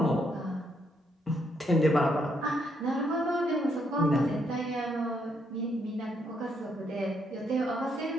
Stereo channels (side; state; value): both; normal; correlation 0.74